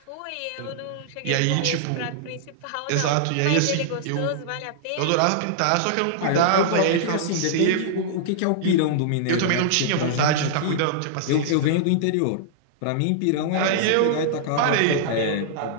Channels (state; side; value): different; both; correlation -0.01